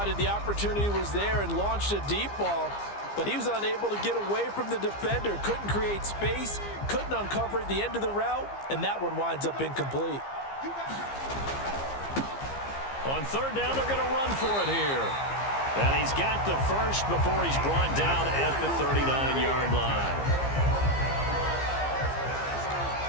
the opportunity was there and launched a deep ball, but he was unable to get away from the defender. Couldn't create space, couldn't uncover at the end of the route, and that one winds up incomplete. On third down, they're going to run for it here. And he's got the first before he's brought down at the 39-yard line.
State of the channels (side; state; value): right; late; 15 ms